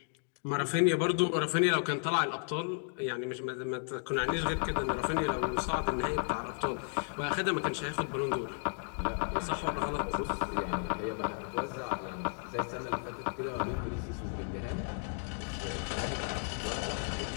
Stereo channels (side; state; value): right; silent; 55 dB below the other